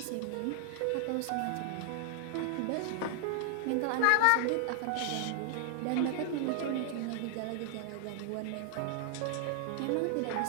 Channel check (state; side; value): different; both; correlation 0.00